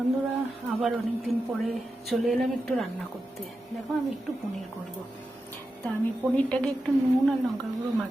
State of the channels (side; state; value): both; normal; correlation 0.90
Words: আবার অনেক দিন পরে চলে এলাম একটু রান্না করতে। দেখো, আমি একটু পনির করব। তা আমি পনিরটাকে একটু নুন আর লঙ্কার গুঁড়ো